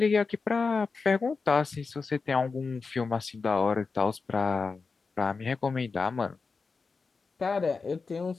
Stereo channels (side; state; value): right; quieter; 4.6 dB